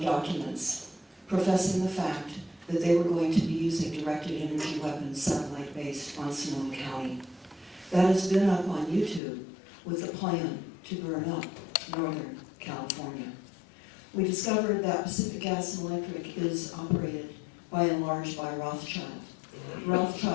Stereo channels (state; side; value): drops out; right; at 9.2 s